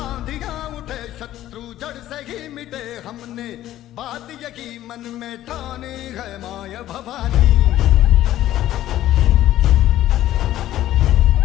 आंधियां उठे शत्रु जड़ से ही मिटे हमने, बात यही मन में ठाने है माए भवानी।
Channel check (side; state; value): right; quieter; 13.6 dB